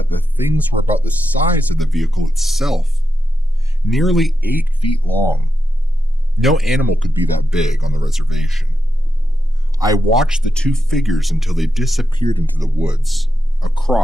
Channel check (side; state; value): both; normal; correlation 0.88